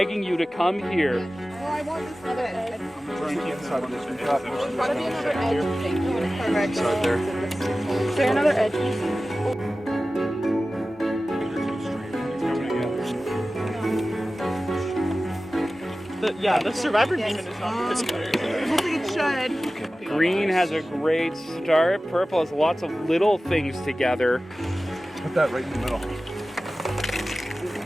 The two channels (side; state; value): both; normal; correlation 0.96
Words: you to come here. Oh, I want this other edge. There's gotta be another edge thing. Perfect. Is there another edge? The Survivor Beeman is not this good. I think it should. Green has a great start. Purple has lots of little things together. Put that right in the middle.